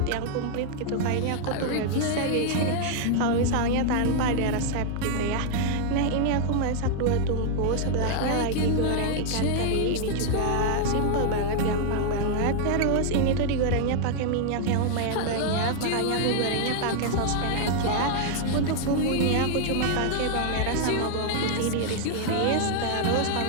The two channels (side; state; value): both; different; correlation 0.00